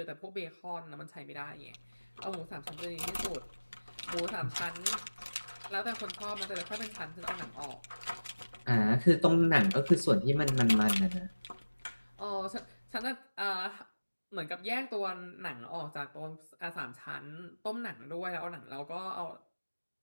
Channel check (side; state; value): both; inverted; correlation -1.00